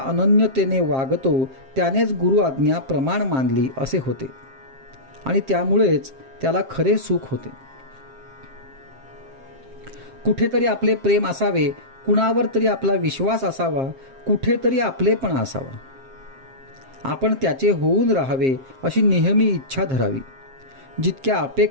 वागतो त्यानेच गुरु आज्ञा प्रमाण मानली असे होते आणि त्यामुळेच त्याला खरे सुख होते. कुठेतरी आपले प्रेम असावे, कुणावर तरी आपला विश्वास असावा, कुठेतरी आपलेपणा असावा. आपण त्याचे होऊन राहावे अशी नेहमी इच्छा धरावी. जितक्या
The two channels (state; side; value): late; left; 7.5 ms